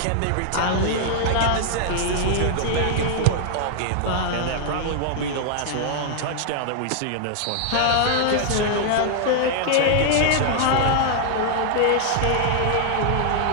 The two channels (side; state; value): both; different; correlation 0.00